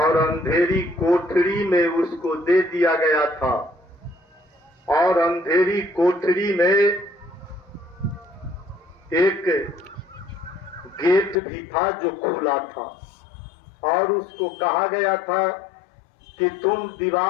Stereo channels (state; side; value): drops out; right; at 11.4 s